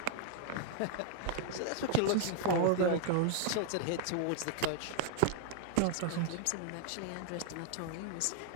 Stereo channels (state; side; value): different; both; correlation 0.00